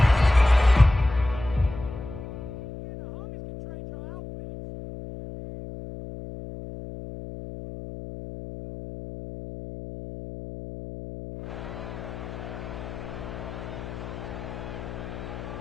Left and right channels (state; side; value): noise; left; hum, 10 dB below the sound